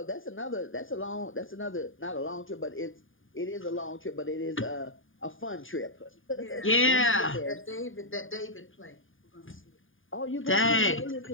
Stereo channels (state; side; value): late; right; 0.58 ms